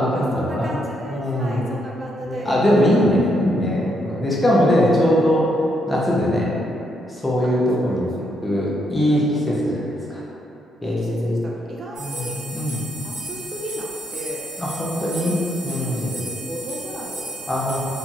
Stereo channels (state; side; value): normal; both; correlation 0.76